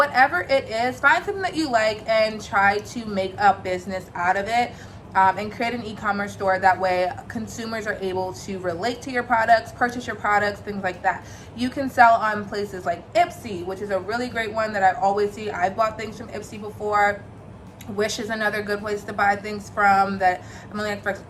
it is. Find something that you like and try to make a business out of it. And create an e-commerce store. That way consumers are able to relate to your products, purchase your products, things like that. You can sell on places like Ipsy, which is a really great one that I always see. I've bought things from Ipsy before. Wish is another good place to buy things from that. I've only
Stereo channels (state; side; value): identical; both; correlation 1.00